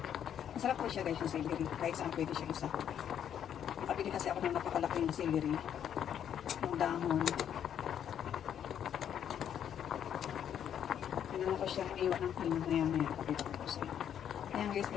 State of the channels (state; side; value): quieter; right; 9.3 dB